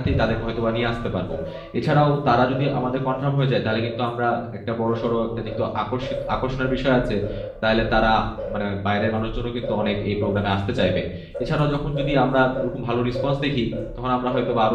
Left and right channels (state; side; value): identical; both; correlation 1.00